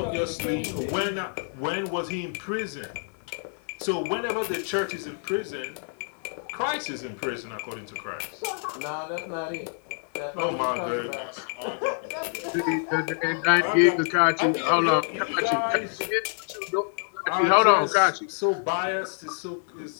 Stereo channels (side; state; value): right; silent; 60 dB below the other